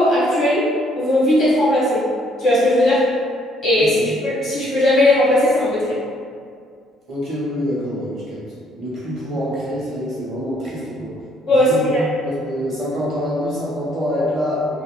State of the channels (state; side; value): normal; both; correlation 0.66